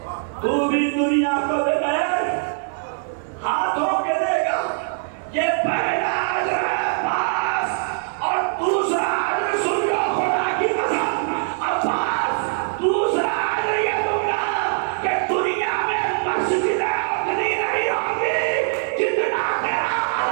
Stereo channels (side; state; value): left; silent; digital silence